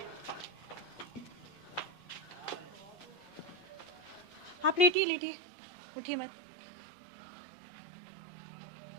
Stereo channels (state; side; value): drops out; left; at 5.0 s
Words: आप लेटिए, लेटिए, उठिए मत।